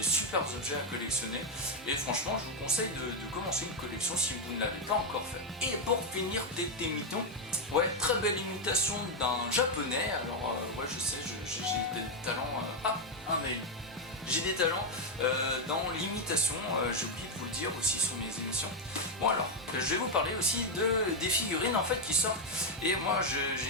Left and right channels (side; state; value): both; normal; correlation 0.03